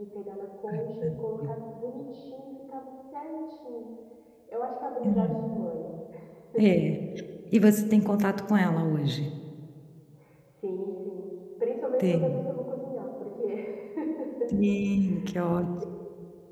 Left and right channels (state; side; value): identical; both; correlation 1.00